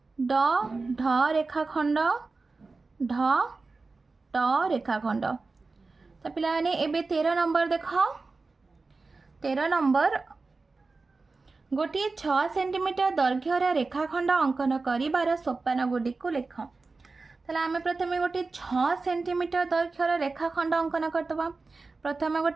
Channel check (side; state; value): left; quieter; 3.9 dB